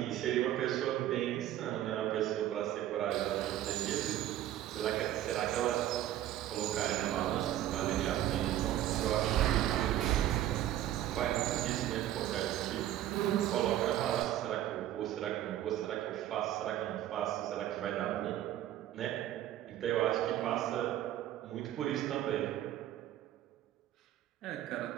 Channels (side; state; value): left; quieter; 12.6 dB